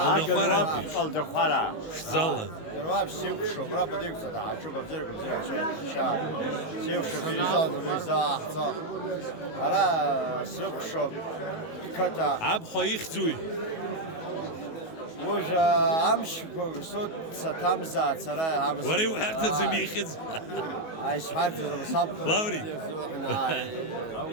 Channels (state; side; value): late; right; 19 ms